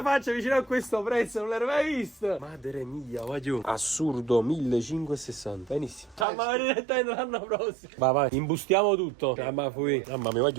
faccia vicino a questo prezzo, non l'ero mai vista. Madre mia, voglio. Assurdo, 1560. Benissimo. Ciao, ma direttamente l'anno prossimo. Vai, imbustiamo tutto. Mamma mia,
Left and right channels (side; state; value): left; drops out; at 6.2 s